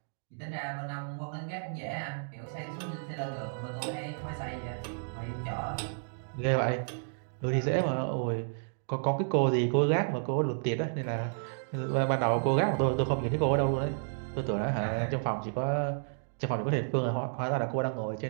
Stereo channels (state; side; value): silent; left; digital silence